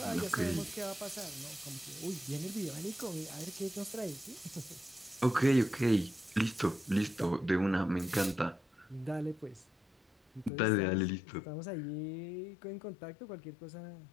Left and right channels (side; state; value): right; drops out; at 10.5 s